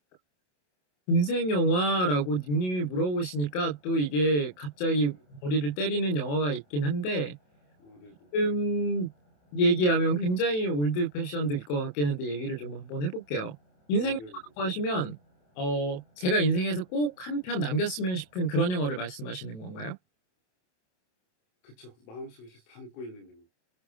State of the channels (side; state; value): right; late; 27 ms